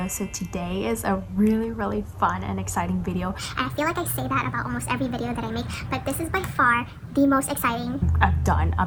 So today is a really fun and exciting video. And I feel like I say that about almost every video that I make, but this is by far the most exciting I've done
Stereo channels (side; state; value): both; identical; correlation 1.00